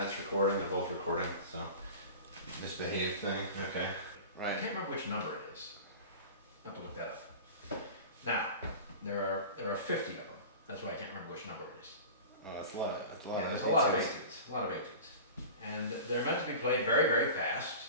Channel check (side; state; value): both; inverted; correlation -0.35